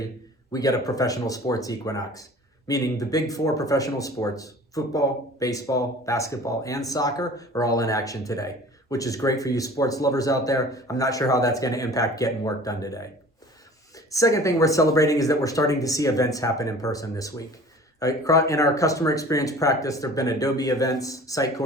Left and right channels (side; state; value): both; normal; correlation 0.45